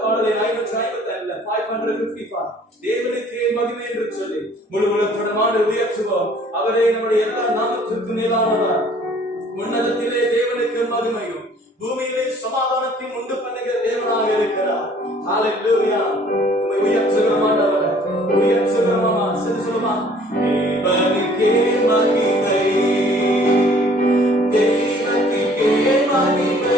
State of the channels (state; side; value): normal; both; correlation 0.55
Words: பாடலை 555 தேவனுக்கே மகிமை என்று சொல்லி முழு உலகத்தோடு உயர்த்துவோம். அவரே நம்முடைய எல்லா நாமத்திற்கு மேலானவர். உன்னதத்திலே தேவனுக்கு மகிமையும் பூமியிலே சமாதானத்தையும் உண்டு பண்ணுகிற தேவனாக இருக்கிறார். ஹalleluya. உம்மை உயர்த்துகிறோம் ஆண்டவரே, உயர்த்துகிறோம். அம்மா சரி சொல்லுமா, தேவனுக்கே மகிமை, தேவனுக்கே